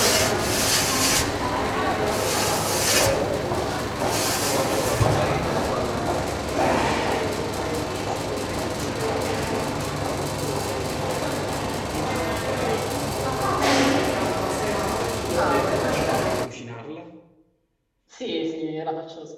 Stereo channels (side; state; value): both; identical; correlation 1.00